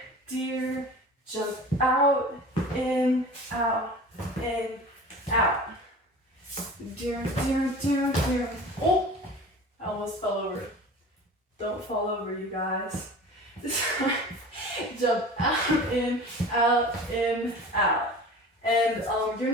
jump out, in, fall over, you guys. Jump out, in, out, in, out. And you're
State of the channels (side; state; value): both; normal; correlation 0.39